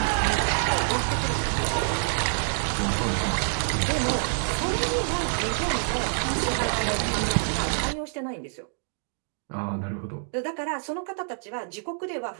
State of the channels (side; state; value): left; silent; digital silence